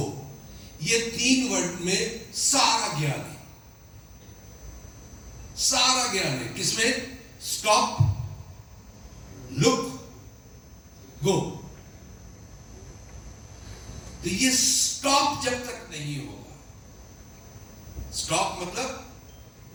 ये 3 वर्ड में सारा ज्ञान है, सारा ज्ञान है। किसमें? स्टॉप, लुक, गो। तो ये स्टॉप जब तक नहीं होगा, स्टॉप मतलब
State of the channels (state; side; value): identical; both; correlation 1.00